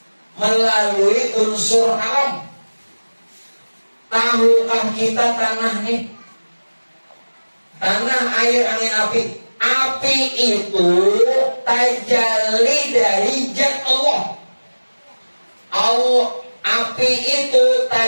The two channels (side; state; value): both; inverted; correlation -1.00